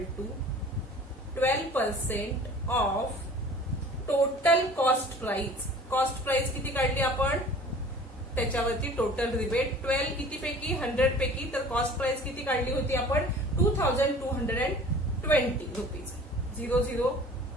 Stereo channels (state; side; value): normal; both; correlation 0.46